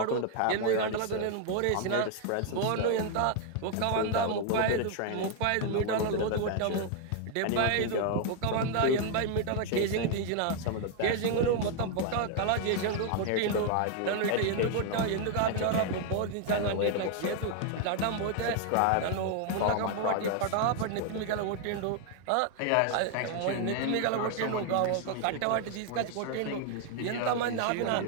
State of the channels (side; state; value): both; different; correlation 0.00